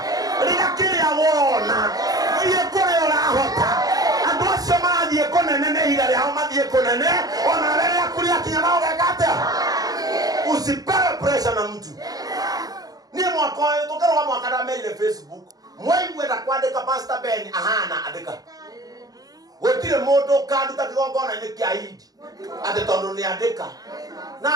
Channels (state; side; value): late; left; 0.18 ms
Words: riga kiria wona thie kuria urahota andu acio marathie kunene ni ihinda riao mathie kunene ona riria kuria kinya nao gekate usipewe pressure na mtu nie mwaka uyu tukarwa mwaka ndamerire Facebook mwaigwenda kwandika Pastor Ben ahana andika gutire mundu kanduta kigongona ni kia Idi ati tondu ni andika na